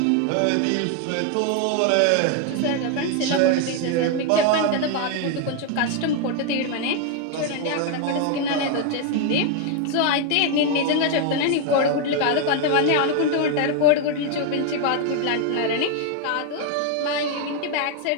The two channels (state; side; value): different; both; correlation 0.01